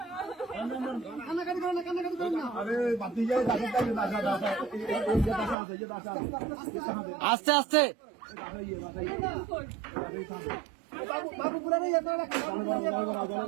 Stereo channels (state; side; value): drops out; left; at 5.6 s